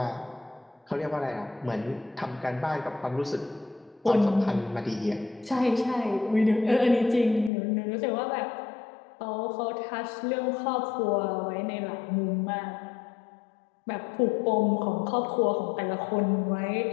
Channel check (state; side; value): drops out; right; at 7.5 s